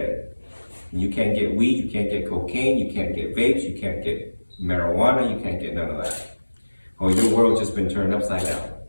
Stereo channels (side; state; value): both; inverted; correlation -1.00